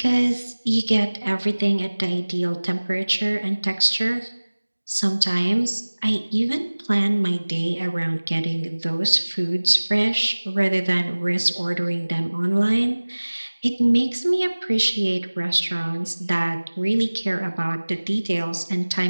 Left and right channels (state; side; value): inverted; both; correlation -1.00